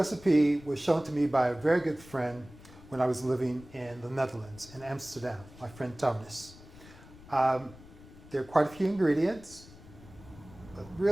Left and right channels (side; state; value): left; noise; rumble, 20 dB below the sound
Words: was shown to me by a very good friend when I was living in the Netherlands, in Amsterdam, my friend Thomas. There are quite a few ingredients, but